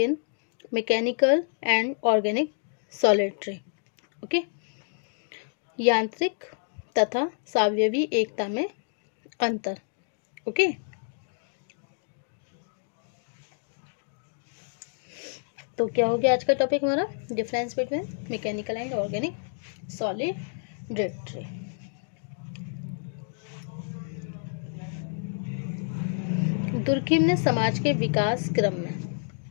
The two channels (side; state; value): right; silent; digital silence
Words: mechanical and organic solidarity. Okay, यांत्रिक तथा सावयवी एकता में अंतर। ओके, तो क्या हो गया आज का टॉपिक हमारा? Difference between mechanical and organic सॉलिडरी। Durkheim ने समाज के विकास